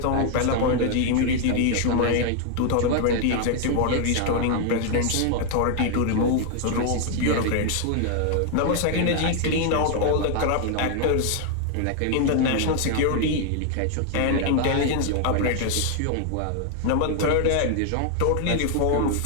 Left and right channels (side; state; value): both; different; correlation 0.00